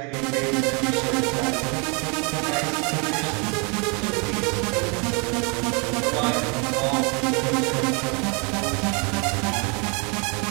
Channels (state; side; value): quieter; left; 32.7 dB